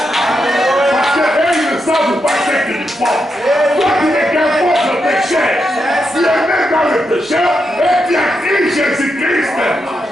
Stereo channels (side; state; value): both; normal; correlation 0.84